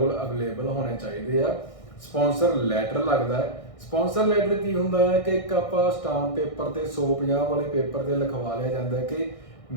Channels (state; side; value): late; right; 1.6 ms